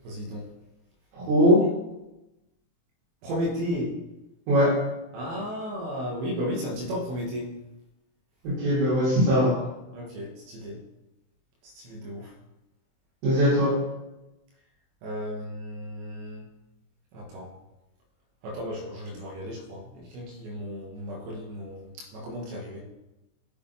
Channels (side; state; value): left; late; 23 ms